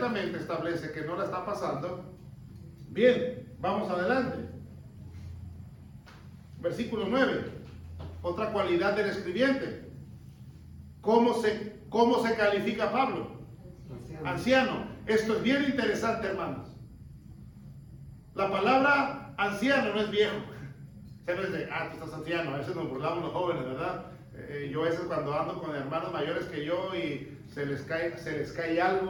establece que no la está pasando. Bien, vamos adelante. Versículo 9. Otra cualidad del escribiente. ¿Cómo se califica Pablo? Anciano. Esto es bien interesante, hermanos. La palabra anciano no es viejo. O sea, no es de, tú estás anciano. A veces nos burlamos los jóvenes, ¿verdad? Yo a veces cuando ando con hermanos mayores que yo y se les cae algo,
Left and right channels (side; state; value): both; identical; correlation 1.00